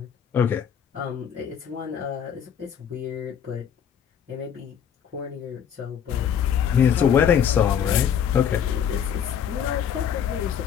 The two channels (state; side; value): quieter; right; 8.5 dB